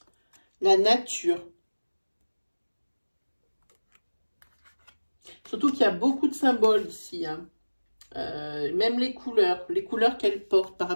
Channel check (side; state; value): both; inverted; correlation -1.00